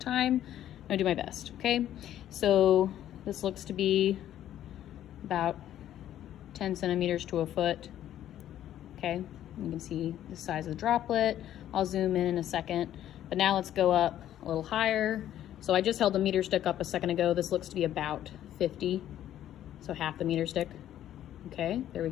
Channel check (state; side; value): quieter; right; 11.7 dB